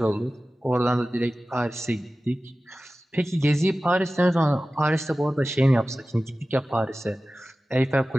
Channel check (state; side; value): normal; both; correlation 0.96